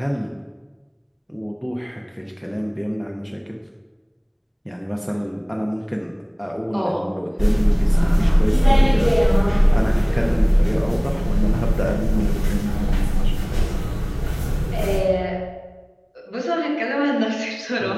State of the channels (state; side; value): identical; both; correlation 1.00